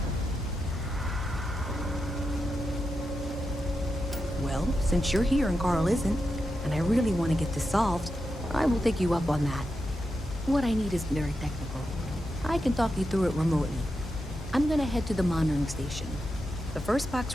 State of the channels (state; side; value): normal; both; correlation 0.87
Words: Well, since you're here and Carl isn't, and I really want to get this solved, I will take you up on that. What I need is very technical. I can talk you through it remotely. I'm gonna head to the monitoring station. The first